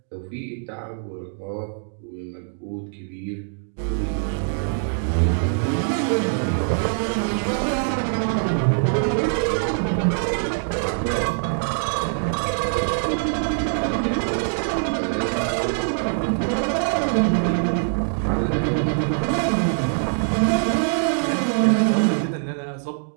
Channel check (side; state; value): left; silent; digital silence